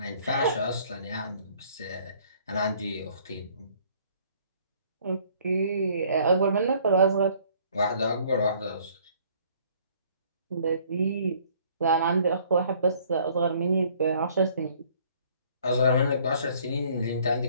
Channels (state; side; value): inverted; both; correlation -0.59